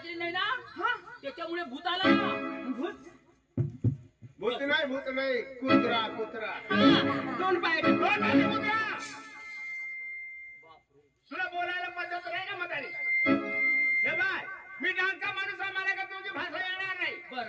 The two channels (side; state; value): both; identical; correlation 1.00